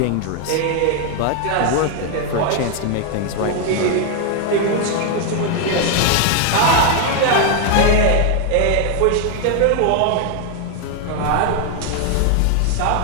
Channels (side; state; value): both; different; correlation 0.00